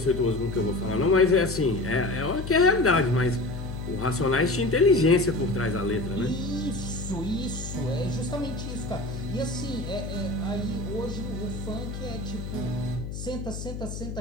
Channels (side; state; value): left; noise; hum, 7 dB below the sound